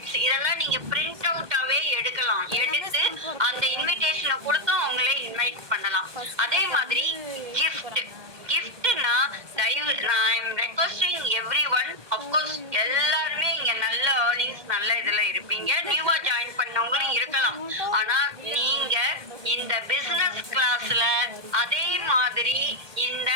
இதெல்லாம் நீங்க பிரிண்ட் அவுட்டாவே எடுக்கலாம். எடுத்து அந்த இன்விடேஷனை கொடுத்து அவங்களே இன்வைட் பண்ணலாம். அதே மாதிரி கிஃப்ட்னா I am requesting everyone, of course எல்லாருமே இங்க நல்ல ஏர்னிங்ஸ் நல்ல இதுல இருப்பீங்க, நியூவா ஜாயின் பண்ணவங்களும் இருக்கலாம். ஆனா நீங்க இந்த பிசினஸ் கிளாஸ்ல அதே மாதிரி இந்த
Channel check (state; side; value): late; left; 1.2 ms